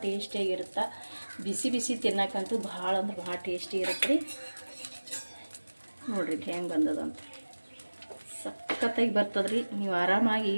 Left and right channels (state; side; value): inverted; both; correlation -1.00